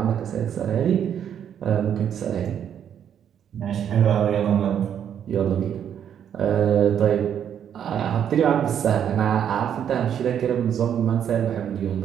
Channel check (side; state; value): left; quieter; 9.0 dB